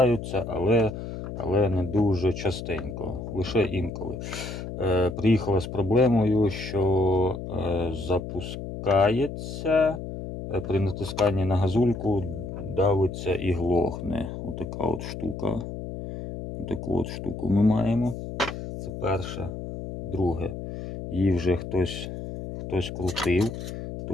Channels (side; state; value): left; noise; hum, 8 dB below the sound